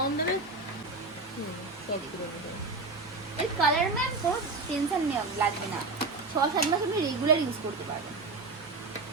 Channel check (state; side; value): quieter; left; 3.6 dB